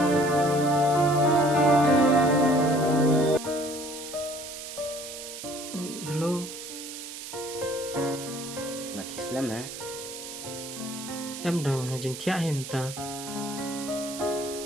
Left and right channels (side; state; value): right; noise; hiss, 10 dB below the sound